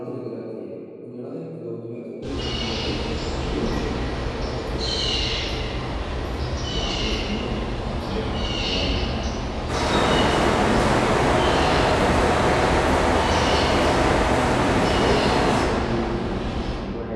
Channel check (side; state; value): both; identical; correlation 1.00